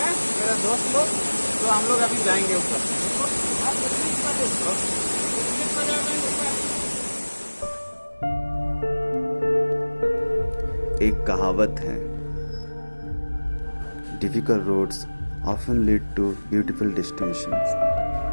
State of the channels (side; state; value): both; inverted; correlation -1.00